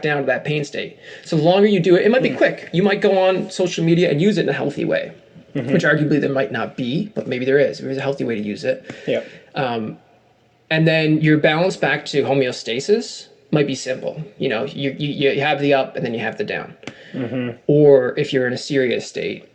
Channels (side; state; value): both; identical; correlation 1.00